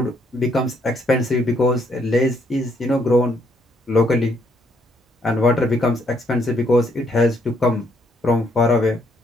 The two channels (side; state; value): both; normal; correlation 0.71